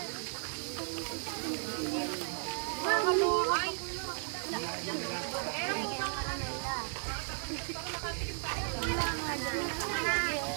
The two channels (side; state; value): left; silent; 54 dB below the other